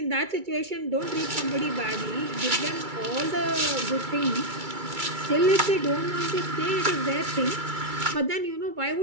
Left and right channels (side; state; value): left; late; 2.3 ms